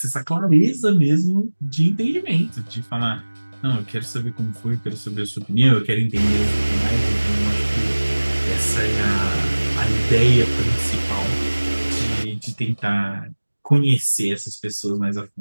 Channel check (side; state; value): both; inverted; correlation -1.00